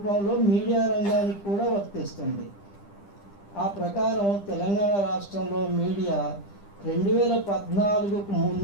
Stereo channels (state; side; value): late; right; 10 ms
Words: మీడియా రంగానికి కూడా వర్తిస్తుంది. ఆ ప్రకారం తెలంగాణ రాష్ట్రంలో మీడియా 2014కు